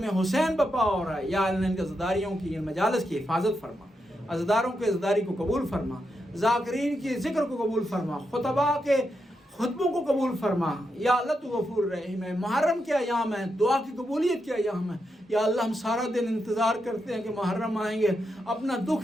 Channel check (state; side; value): normal; both; correlation 0.84